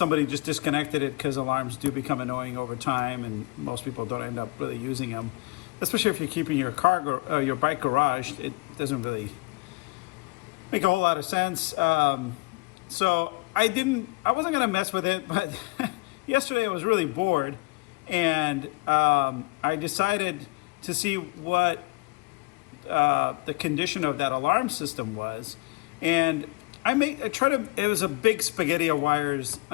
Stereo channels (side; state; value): right; quieter; 25.9 dB